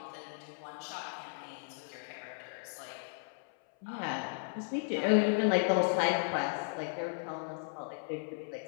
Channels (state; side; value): silent; right; 54 dB below the other